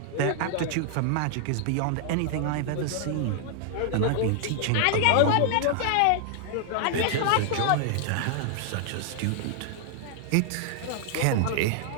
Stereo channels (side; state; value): both; different; correlation -0.01